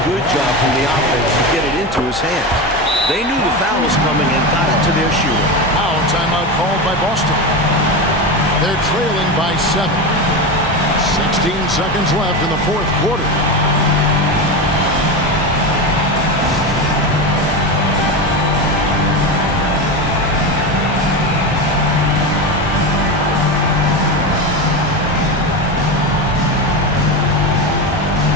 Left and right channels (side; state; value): both; normal; correlation 0.19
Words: good job from the offense to get it into his hands. They knew the foul was coming and got it to their shooter. Now a timeout called by Boston. They're trailing by 7. 16 seconds left in the fourth quarter.